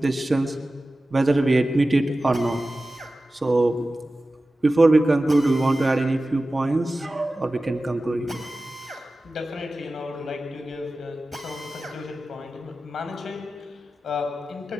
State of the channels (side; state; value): both; normal; correlation 0.95